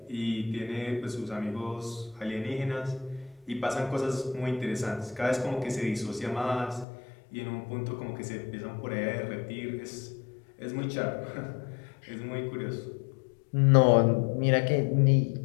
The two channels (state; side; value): drops out; right; at 6.9 s